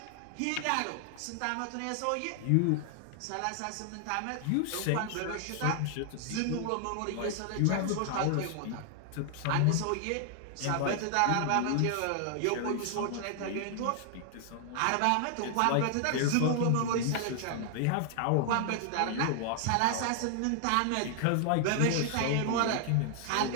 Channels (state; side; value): different; both; correlation 0.00